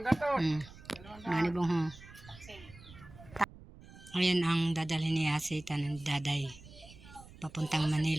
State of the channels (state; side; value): noise; right; rumble, 19 dB below the sound